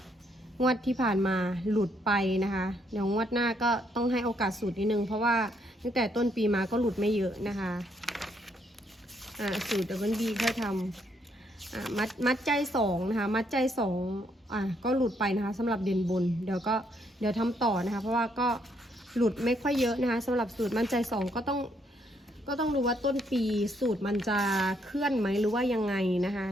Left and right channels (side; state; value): both; normal; correlation 0.73